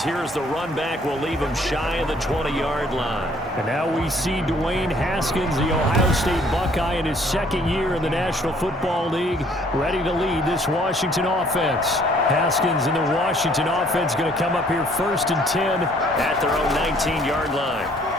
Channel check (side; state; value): both; normal; correlation 0.61